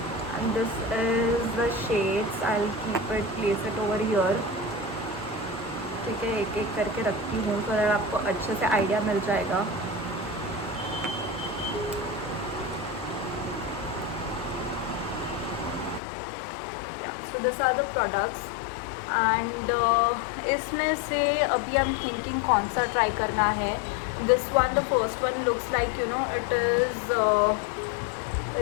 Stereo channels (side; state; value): right; drops out; at 16.0 s